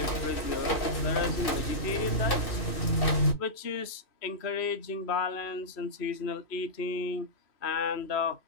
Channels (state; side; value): late; right; 2.7 ms